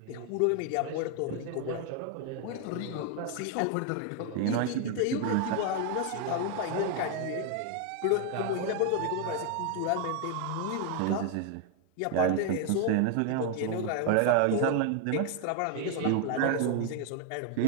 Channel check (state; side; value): different; both; correlation 0.01